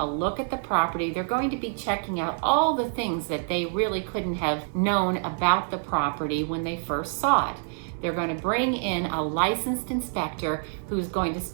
look at the property. They're going to be checking out all the things that they really couldn't have known about the property when they first saw it. They're going to bring in a licensed inspector who's going to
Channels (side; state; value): left; silent; 60 dB below the other